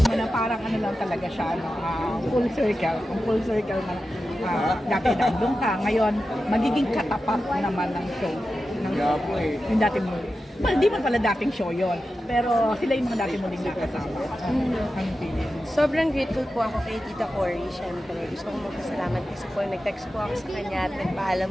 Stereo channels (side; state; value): both; normal; correlation 0.92